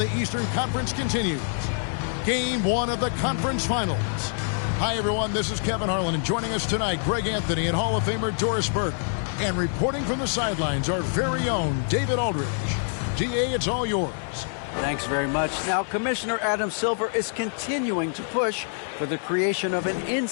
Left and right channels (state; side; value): silent; right; digital silence